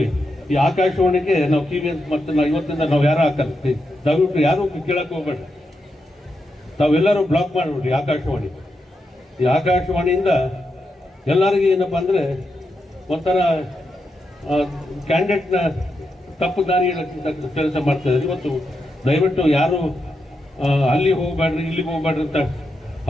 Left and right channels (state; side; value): normal; both; correlation 0.85